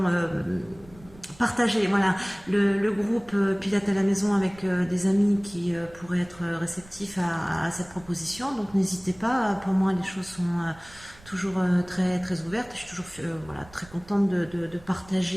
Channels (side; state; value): right; noise; rumble, 23 dB below the sound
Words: partager voilà, le groupe Pilates à la maison avec des amis qui pourraient être réceptifs à cette proposition. Donc n'hésitez pas, pour moi les choses sont toujours très, très ouvertes. Je suis toujours voilà, très contente de